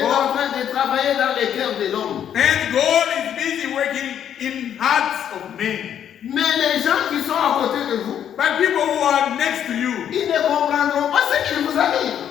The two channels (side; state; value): right; quieter; 9.5 dB